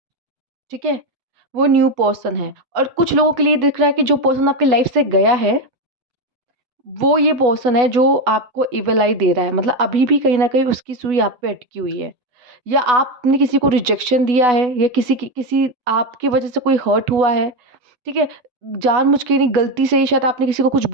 ठीक है, वो न्यू पर्सन है। और कुछ लोगों के लिए दिख रहा है कि जो पर्सन आपकी लाइफ से गया है, वो ये पर्सन है जो आपको इविल आई दे रहा है। मतलब अभी भी कहीं न कहीं उसकी सुई आप पे अटकी हुई है। या आपने किसी को रिजेक्शन दिया है, या किसी आपकी वज़ह से कोई हर्ट हुआ है। ठीक है, जानबूझ के नहीं, गलती से ही शायद आपने किसी को कुछ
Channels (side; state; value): left; late; 8.1 ms